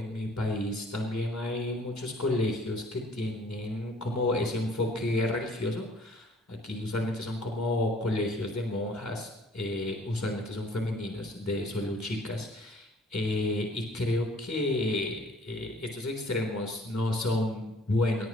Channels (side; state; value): both; normal; correlation 0.56